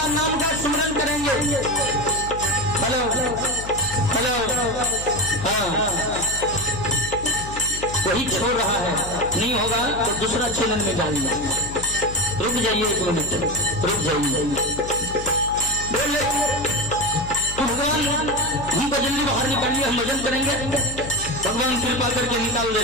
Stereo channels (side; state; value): left; noise; hum, 11 dB below the sound